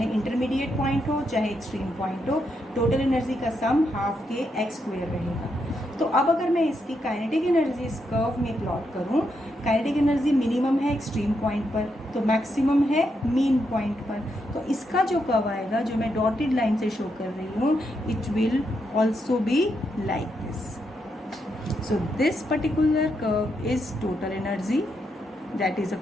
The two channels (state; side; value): normal; both; correlation 0.81